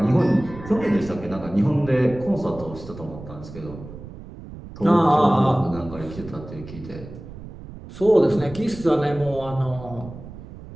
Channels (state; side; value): noise; right; rumble, 14 dB below the sound